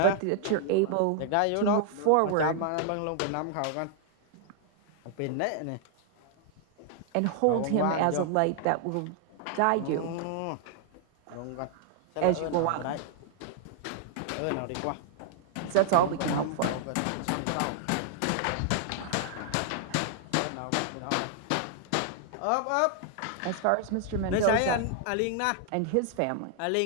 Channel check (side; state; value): both; different; correlation 0.00